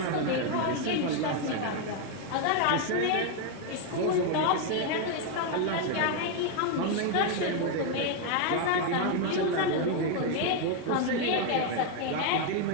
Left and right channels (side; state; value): both; different; correlation 0.01